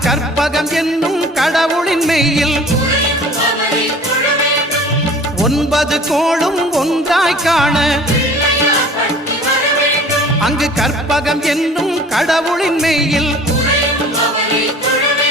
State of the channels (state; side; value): normal; both; correlation 0.46